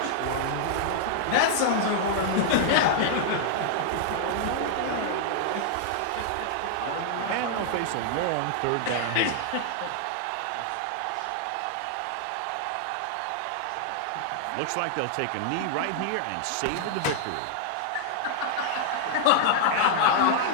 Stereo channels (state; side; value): different; both; correlation -0.01